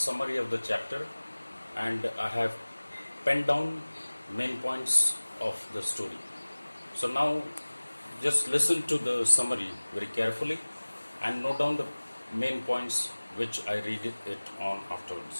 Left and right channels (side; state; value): both; inverted; correlation -1.00